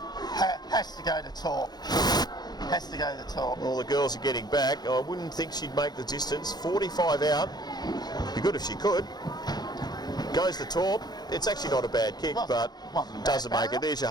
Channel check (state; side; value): late; right; 0.20 ms